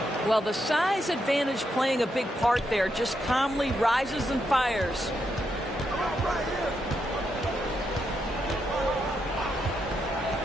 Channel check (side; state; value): both; normal; correlation 0.82